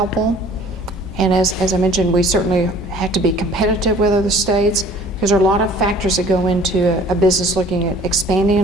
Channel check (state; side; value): normal; both; correlation 0.51